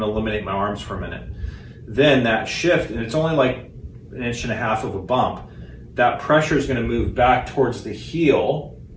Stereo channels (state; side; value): identical; both; correlation 1.00